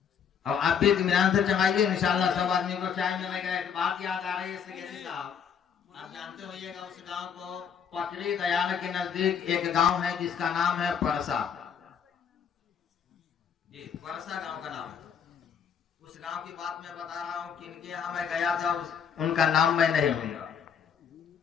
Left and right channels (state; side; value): quieter; right; 7.5 dB